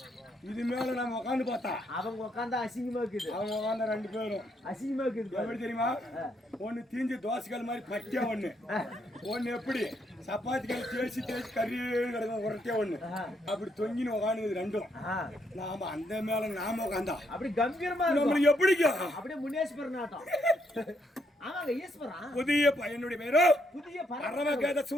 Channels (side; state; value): both; normal; correlation 0.75